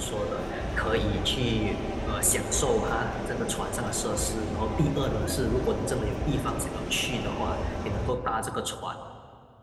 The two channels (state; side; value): identical; both; correlation 1.00